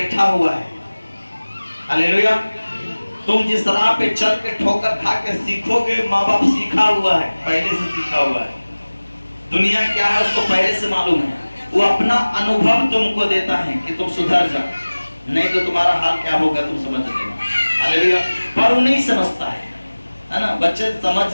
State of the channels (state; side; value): inverted; both; correlation -1.00